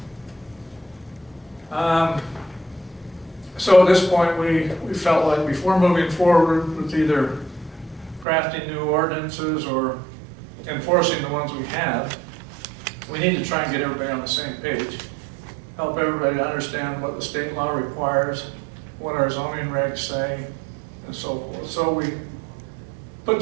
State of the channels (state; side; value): drops out; left; at 8.2 s